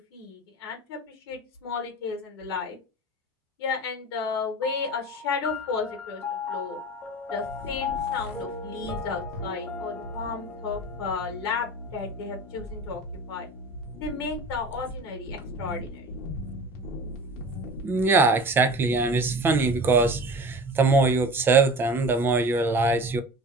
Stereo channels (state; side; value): normal; both; correlation 0.36